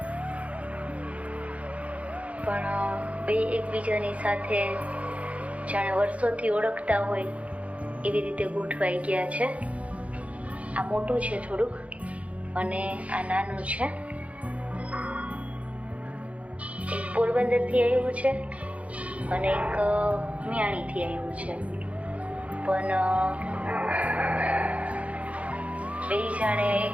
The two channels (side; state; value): left; late; 0.065 ms